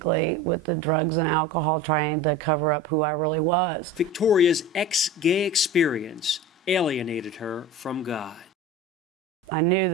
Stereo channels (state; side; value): normal; both; correlation 0.33